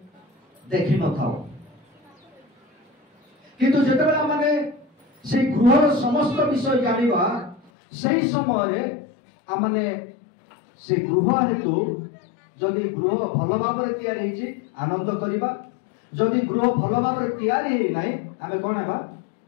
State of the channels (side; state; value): right; drops out; at 7.7 s